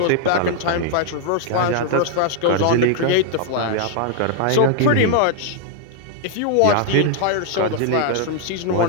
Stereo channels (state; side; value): different; both; correlation 0.00